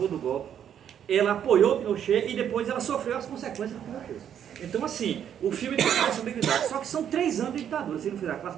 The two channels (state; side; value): quieter; left; 9.3 dB